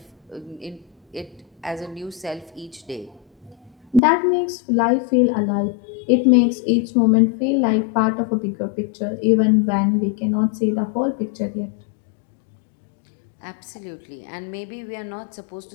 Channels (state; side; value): drops out; right; at 4.0 s